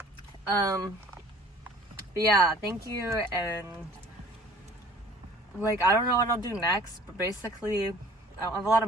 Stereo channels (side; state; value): both; normal; correlation 0.50